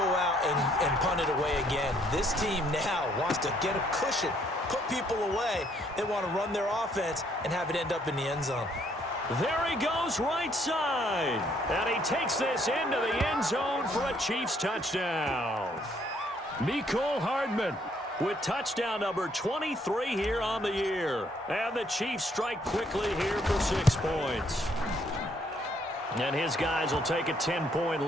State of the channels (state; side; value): normal; both; correlation 0.67